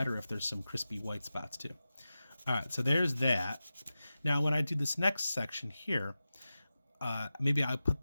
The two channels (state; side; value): inverted; both; correlation -0.94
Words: if there's some crispy white spots too. All right, so there's that. Now when I do this next section here, maybe I'll put